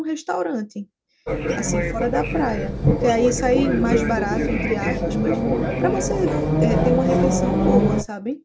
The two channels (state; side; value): identical; both; correlation 1.00